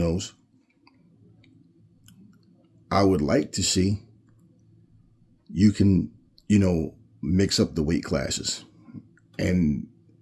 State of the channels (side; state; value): both; identical; correlation 1.00